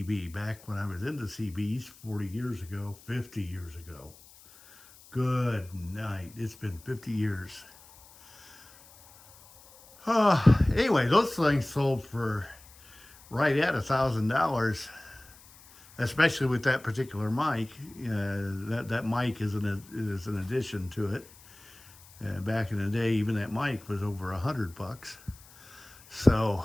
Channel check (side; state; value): left; noise; hiss, 23 dB below the sound